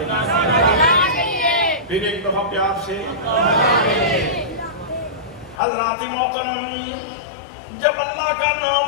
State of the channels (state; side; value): drops out; right; at 5.6 s